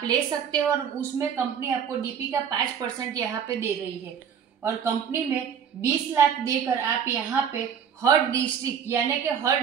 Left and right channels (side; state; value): left; quieter; 7.7 dB